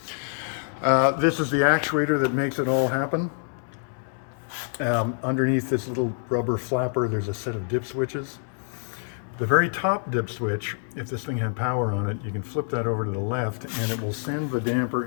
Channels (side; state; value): right; silent; 61 dB below the other